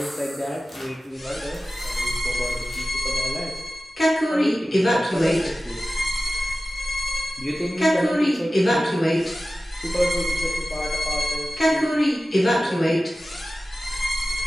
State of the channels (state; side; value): normal; both; correlation 0.95